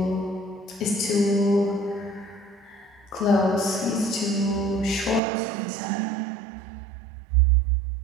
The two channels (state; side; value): drops out; left; at 5.2 s